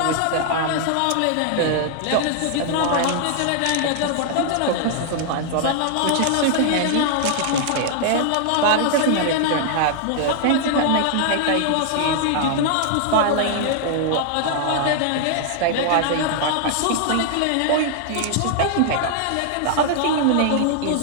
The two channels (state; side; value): different; both; correlation 0.00